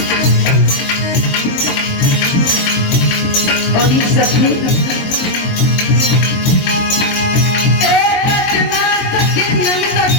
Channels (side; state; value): right; late; 22 ms